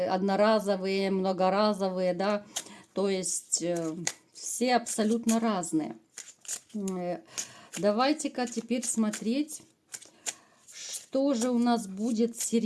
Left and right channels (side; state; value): both; identical; correlation 1.00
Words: многоразовые, да. То есть все абсолютно разные. Давайте-ка теперь смотреть, что же у нас будет с